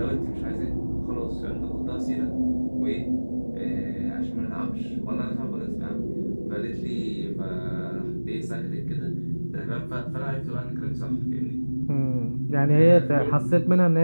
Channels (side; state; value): both; inverted; correlation -1.00